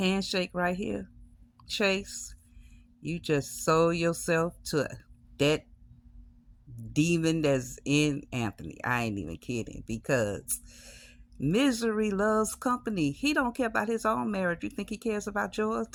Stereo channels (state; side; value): identical; both; correlation 1.00